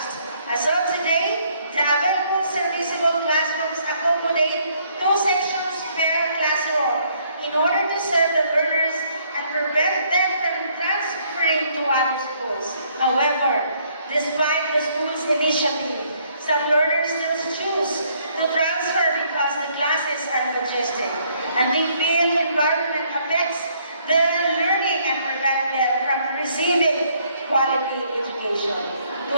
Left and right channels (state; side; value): inverted; both; correlation -0.67